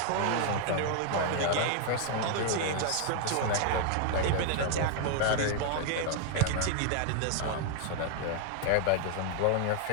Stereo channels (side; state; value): both; different; correlation 0.00